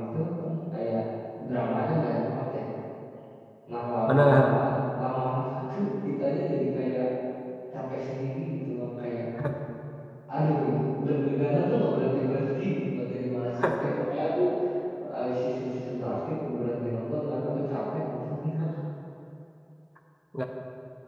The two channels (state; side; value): identical; both; correlation 1.00